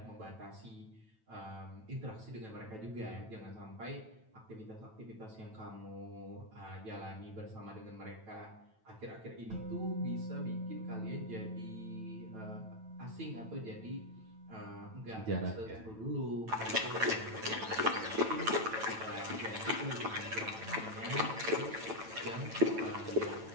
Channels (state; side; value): late; left; 9.1 ms